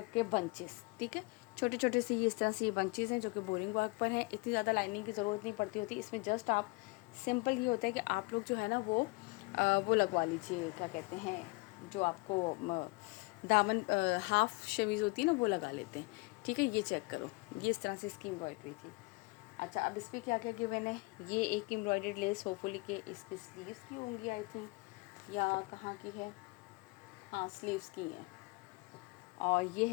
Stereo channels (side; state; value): right; quieter; 26.5 dB